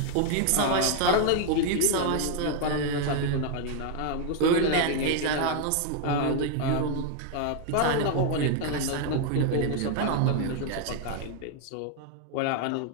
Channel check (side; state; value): both; different; correlation 0.00